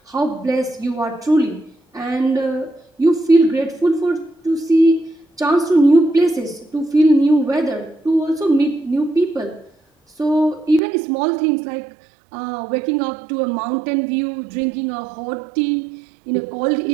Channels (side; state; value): left; drops out; at 10.8 s